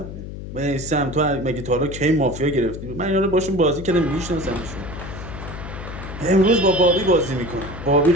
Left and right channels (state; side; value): noise; left; hum, 10 dB below the sound